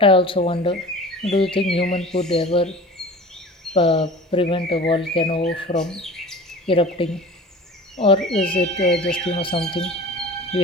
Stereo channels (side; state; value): both; normal; correlation 0.39